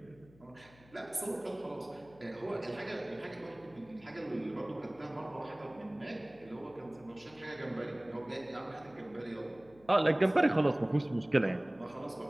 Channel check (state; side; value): noise; left; hum, 25 dB below the sound